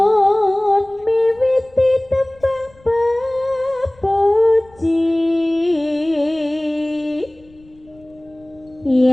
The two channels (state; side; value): noise; left; rumble, 28 dB below the sound